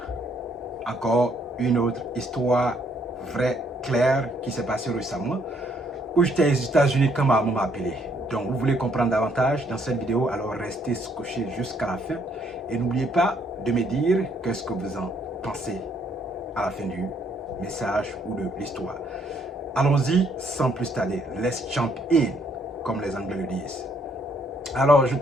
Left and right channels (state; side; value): normal; both; correlation 0.68